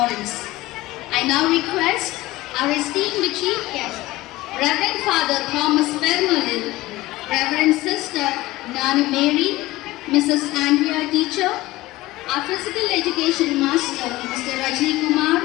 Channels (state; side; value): quieter; right; 18.4 dB